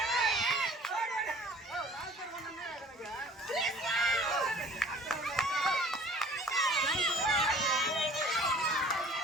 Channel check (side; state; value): both; normal; correlation 0.50